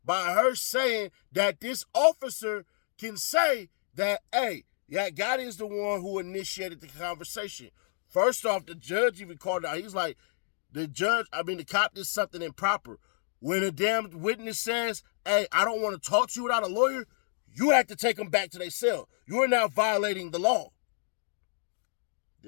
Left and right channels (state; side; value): silent; right; digital silence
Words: by her saying that this officer can say that, hey, Gotti is the one who initiated the conversation. First off, the judge even called out. He's like, the cop did something improper. When a damn witness says, hey, I don't want to talk to you without a lawyer, you have to take them back to their cell. You are now violating the law.